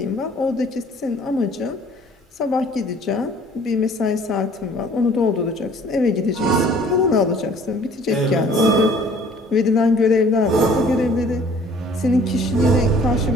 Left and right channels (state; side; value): normal; both; correlation 0.54